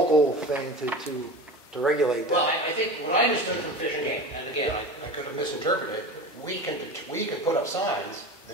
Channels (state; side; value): normal; both; correlation 0.31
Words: thing to regulate that. well, I think what I understood from Fish and Game, and again, I could have misinterpreted, we can put up signs, the